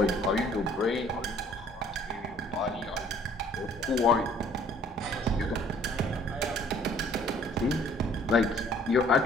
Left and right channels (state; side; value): normal; both; correlation 0.57